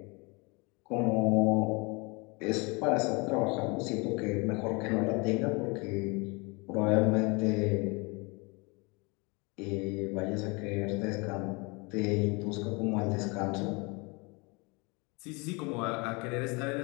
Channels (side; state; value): right; quieter; 28.7 dB